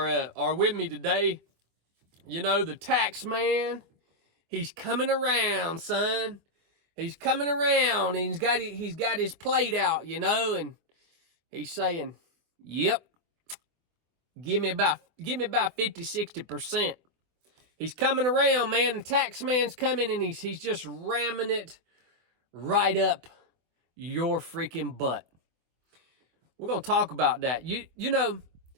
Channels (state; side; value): late; left; 24 ms